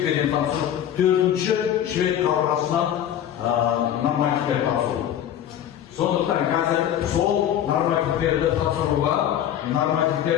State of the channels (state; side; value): quieter; right; 10.5 dB